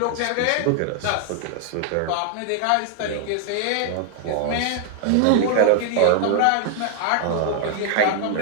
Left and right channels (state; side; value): different; both; correlation 0.00